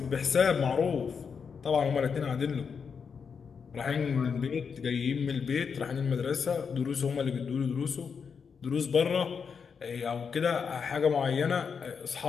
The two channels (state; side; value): quieter; right; 6.2 dB